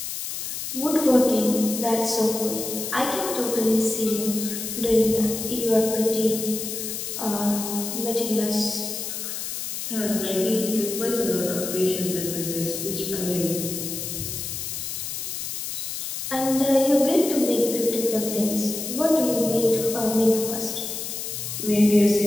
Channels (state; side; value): noise; left; hiss, 5 dB below the sound